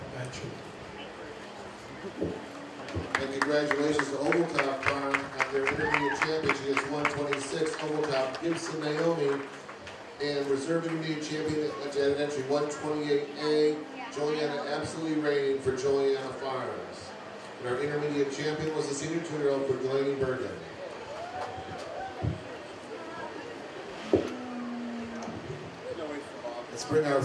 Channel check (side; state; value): both; identical; correlation 1.00